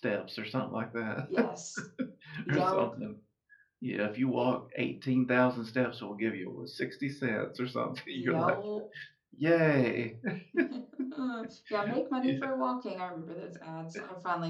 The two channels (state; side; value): identical; both; correlation 1.00